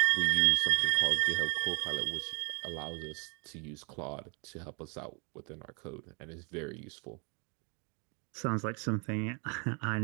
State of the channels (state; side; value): quieter; left; 35.0 dB